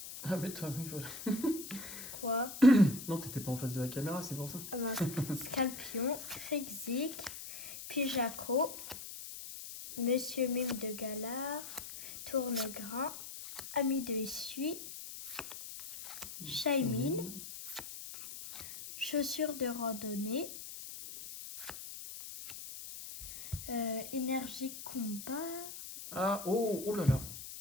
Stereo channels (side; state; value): left; noise; hiss, 10 dB below the sound